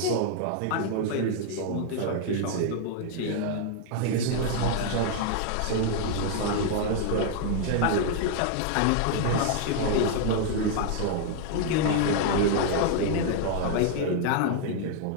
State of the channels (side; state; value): both; different; correlation 0.00